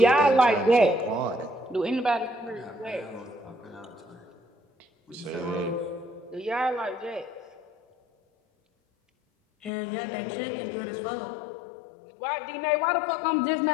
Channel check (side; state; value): right; drops out; at 9.7 s